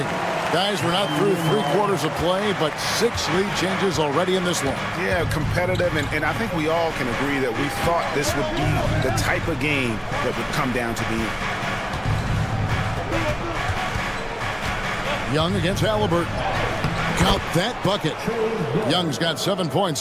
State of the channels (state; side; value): identical; both; correlation 1.00